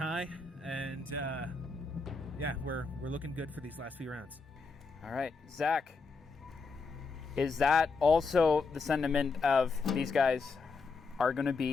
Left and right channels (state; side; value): quieter; right; 4.4 dB